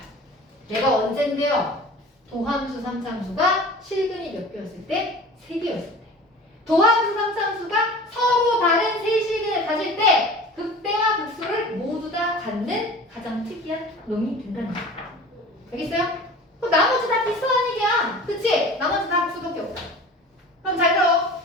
얘가 언젠데요? 도함수 3참수가 실근이 몇 개였을 때? 3개였을 때. 도함수 3참수가 서로 다른 세 실근을 가질 때 극대와 극소를 모두 다 갖는 가장 특이한 놈이 된다는 거예요. 알겠어요? 그럼 나머지 다 비슷한 얘기야. 그치? 나머지 다 극소밖에 없다. 그럼 잘 들어.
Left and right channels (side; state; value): both; normal; correlation 0.40